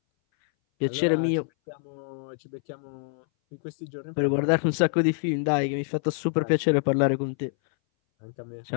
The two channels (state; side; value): silent; right; 59 dB below the other